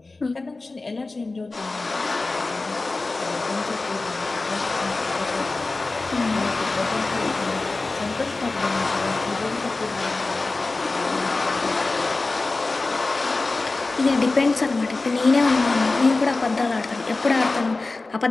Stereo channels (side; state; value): right; quieter; 3.4 dB